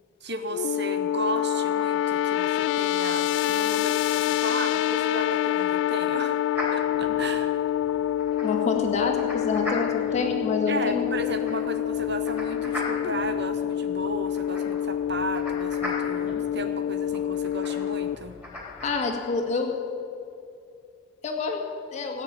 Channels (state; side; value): quieter; right; 7.0 dB